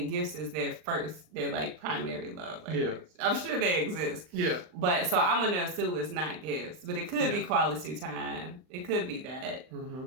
gifts is their primary love language. Yeah. I'm sure they exist. Yeah. But so I'm gonna assume it's not gifts, but it could be quality time. It could be that.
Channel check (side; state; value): left; late; 39 ms